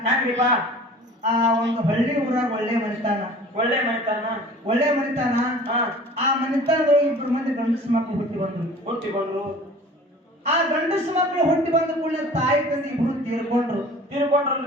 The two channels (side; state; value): both; normal; correlation 0.45